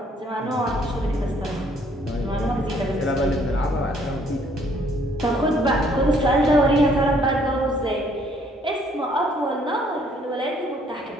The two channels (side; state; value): both; normal; correlation 0.64